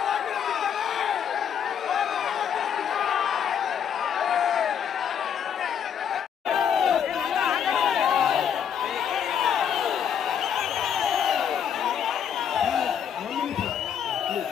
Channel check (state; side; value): quieter; right; 8.3 dB